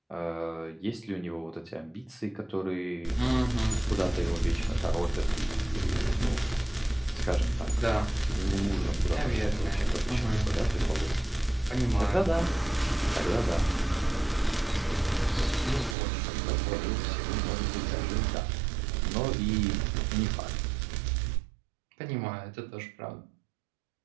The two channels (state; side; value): drops out; left; at 16.0 s